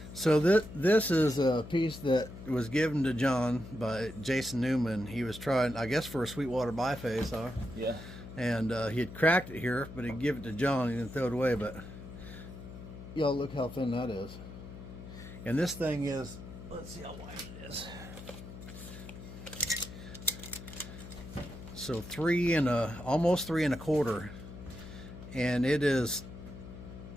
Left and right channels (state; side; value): noise; left; hum, 13 dB below the sound